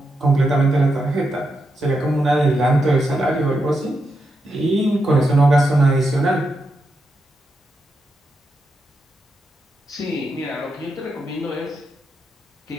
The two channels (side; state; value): both; normal; correlation 0.85